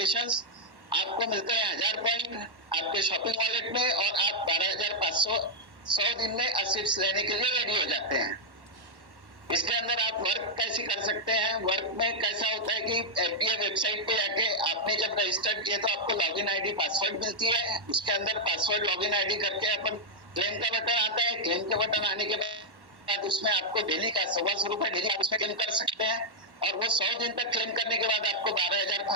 आपको मिलते हैं 1000 पॉइंट आपके शॉपिंग वॉलेट में, और आप 12,500 100 दिन में असिप्स लेने के लिए रेडी हो जाते हैं। इसके अंदर आप वर्क कैसे कर सकते हैं? वर्क में कैसा होता है कि एफडीए वेबसाइट पे जाके आपने जब रजिस्टर्ड किया तो आपको लॉगिन आईडी पासवर्ड मिलती है। उसके अंदर पासवर्ड लॉगिन आईडी करके अपन क्लेम का बटन आता है। क्लेम के बटन आने के बाद उसमें आपको डेली का 125 रुपए डेली आप उसमें क्लेम कर सकते हैं। और वो 100 दिन तक क्लेम करने के बाद आपको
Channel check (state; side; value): late; left; 1.1 ms